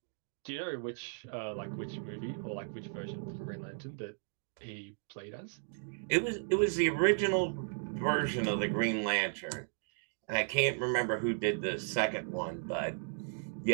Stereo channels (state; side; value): silent; left; digital silence